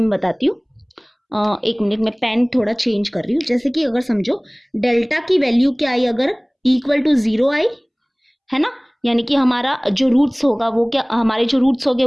बताती हूँ, एक मिनट में पेन थोड़ा चेंज कर रही हूँ। जैसे कि अगर समझो डेल्टा की वैल्यू क्या आई, अगर इक्वल टू 0 आई, है ना, यानी कि हमारा जो रूट्स होगा वो क्या, हमारे जो रूट्स होंगे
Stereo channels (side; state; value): both; identical; correlation 1.00